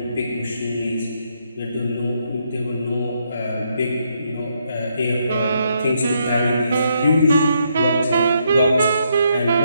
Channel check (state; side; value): inverted; both; correlation -0.76